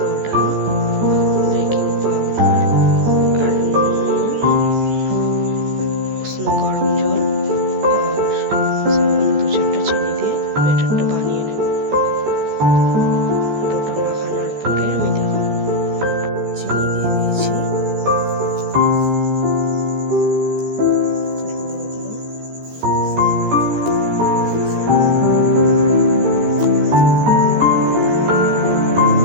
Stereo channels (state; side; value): late; left; 14 ms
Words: বেকিং পাউডার আর নুন, উষ্ণ গরম জল আর সামান্য 2-4টা চিনি দিয়ে ব্যাটারটা বানিয়ে নেব। ডোটা মাখানোর পরে আমি দেখাবো। চিনি দিয়ে দিয়েছি,